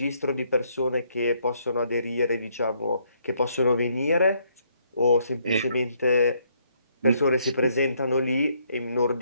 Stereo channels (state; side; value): inverted; both; correlation -0.70